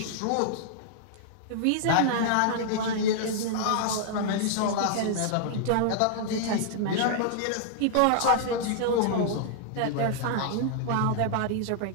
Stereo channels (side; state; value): both; different; correlation -0.01